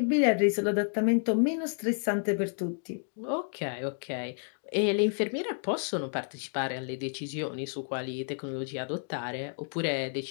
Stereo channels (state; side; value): silent; right; 58 dB below the other